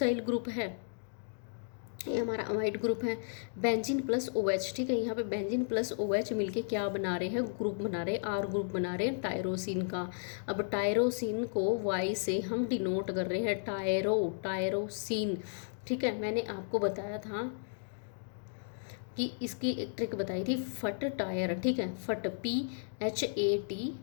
ग्रुप है, ये हमारा अमाइड ग्रुप है। बेंजीन प्लस OH, ठीक है। यहाँ पे बेंजीन प्लस OH मिलके क्या बना रहे हैं, ग्रुप बना रहे हैं, R ग्रुप बना रहे हैं टायरोसिन का। अब टायरोसिन को Y से हम डिनोट कर रहे हैं, टायरोसिन, ठीक है। मैंने आपको बताया था कि इसकी एक ट्रिक बताई थी, फट टायर, ठीक है, फट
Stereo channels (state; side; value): silent; right; digital silence